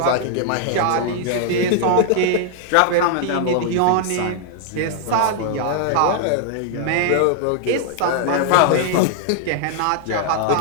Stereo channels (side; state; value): both; different; correlation 0.00